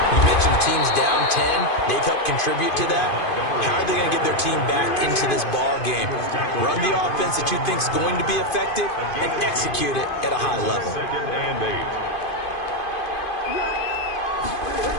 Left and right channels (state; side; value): late; right; 2.5 ms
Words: You mentioned the team's down 10. They've helped contribute to that. How are they going to get their team back into this ball game? Run the offense that you think is going to be effective and execute it at a high level. 2nd and 8.